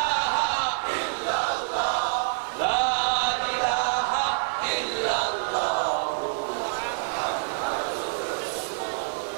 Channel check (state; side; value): silent; left; digital silence